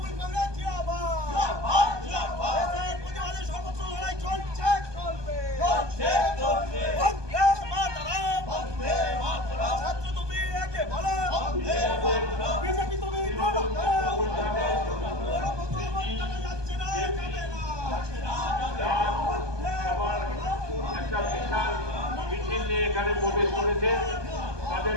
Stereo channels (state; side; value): late; left; 1.2 ms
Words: কংগ্রেস জিন্দাবাদ। দেশের প্রতিবাদে সর্বত্র লড়াই চলছে, চলবে। বন্দে মাতরম। ছাত্র তুমি একে বলো, বিজেপি তুমি বলো, যাচ্ছে না, যাবে না। একটা বিশাল মিছিল নিয়ে এখানে প্রবেশ করেছে,